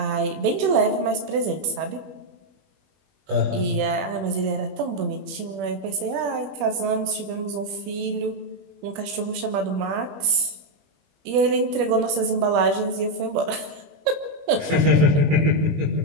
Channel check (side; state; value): left; late; 21 ms